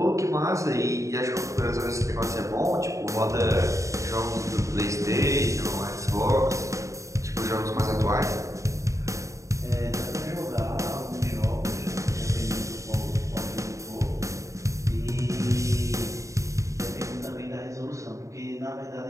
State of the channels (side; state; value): left; late; 0.15 ms